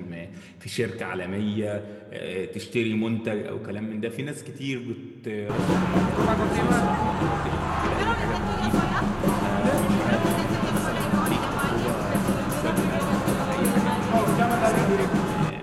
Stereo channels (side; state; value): both; identical; correlation 1.00